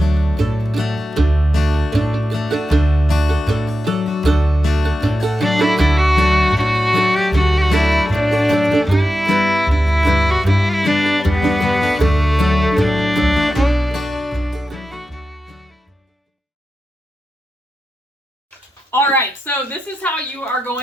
All right, so this is how you are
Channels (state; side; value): normal; both; correlation 0.91